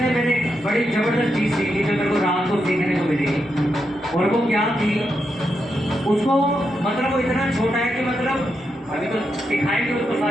मैंने एक बड़ी जबरदस्त चीज सीखी जो मेरे को रात को सीखने को मिली। और वो क्या थी, उसको मतलब वो इतना छोटा है कि मतलब अभी तो सिखाएंगे उसको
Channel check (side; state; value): both; normal; correlation 0.84